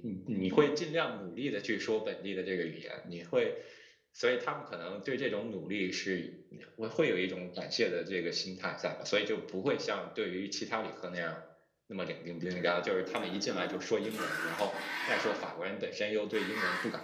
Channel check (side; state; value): both; identical; correlation 1.00